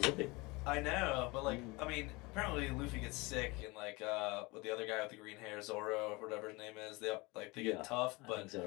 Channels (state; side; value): quieter; right; 24.7 dB